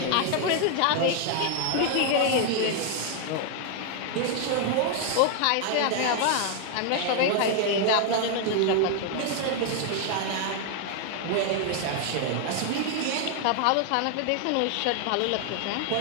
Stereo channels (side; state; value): both; different; correlation 0.00